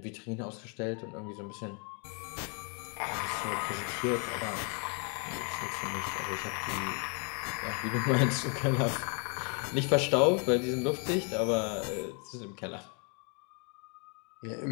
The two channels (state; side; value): quieter; right; 36.1 dB